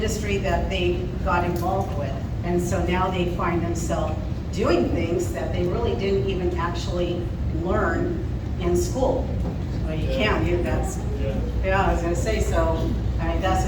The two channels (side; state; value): both; identical; correlation 1.00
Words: that they got involved with. And so now they find themselves doing things that they really didn't even actually learn in school. Well, you can, that's, yeah, I was gonna say, so, I mean, that's,